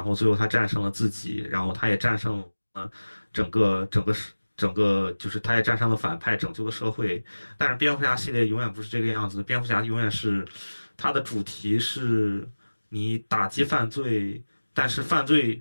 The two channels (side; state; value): both; inverted; correlation -1.00